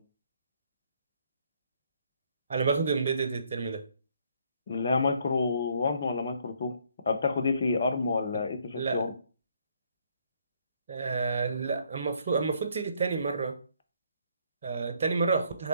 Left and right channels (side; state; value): both; inverted; correlation -0.68